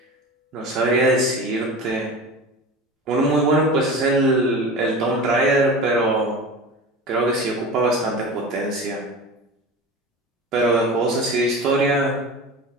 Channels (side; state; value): both; normal; correlation 0.32